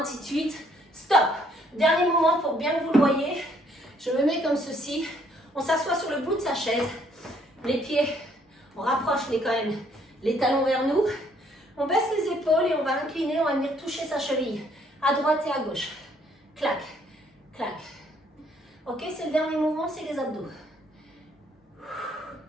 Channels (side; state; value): both; normal; correlation 0.66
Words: de suite. Stop. Dernier mouvement pour bien que vous le voyez. Je me mets comme ceci. On s'assoit sur le bout de sa chaise. Les pieds, on rapproche quand même les talons vers nous. On baisse les épaules et on va incliner, on va venir toucher sa cheville. À droite et à gauche. Clac, clac. Ok, c'est le dernier mouvement, c'est les abdos.